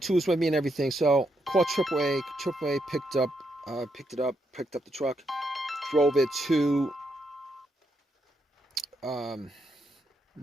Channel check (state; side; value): normal; both; correlation 0.79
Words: with me and everything. So called AAA. AAA picked up the truck, drove it to